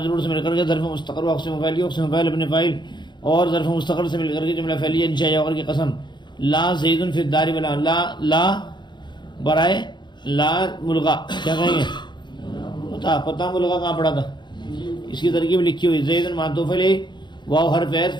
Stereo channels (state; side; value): late; right; 0.22 ms